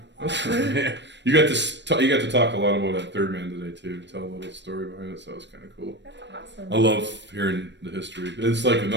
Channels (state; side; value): late; left; 0.52 ms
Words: that's great. You got to talk a lot about that third man today too. Tell a little story behind it, so it was kind of cool. That's awesome. I love hearing the history. It's like